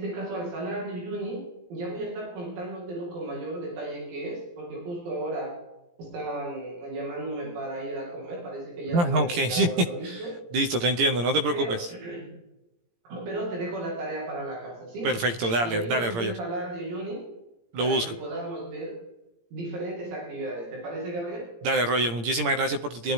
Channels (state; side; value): late; left; 17 ms